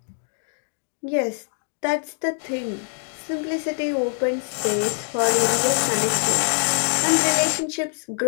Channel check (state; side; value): silent; right; digital silence